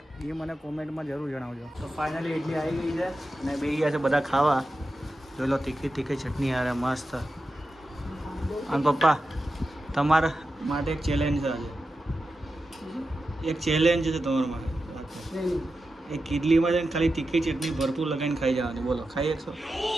એ મને કોમેન્ટમાં જરૂર જણાવજો. તો ફાઇનલી ઇડલી આવી ગઈ છે અને બે ગયા છે બધા ખાવા. જોઈ લો તીખી ચટણી યાર મસ્ત. અને પપ્પા તમારા માટે એક ચેલેન્જ છે આજે. એક ચેલેન્જ છે તમારા માટે. એક ઇડલીમાં છે ને ખાલી તીખી ચટણી ભરપૂર લગાવીને ખાઈ જવાની. બોલો, ખાઈ શકશો?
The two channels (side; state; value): both; normal; correlation 0.91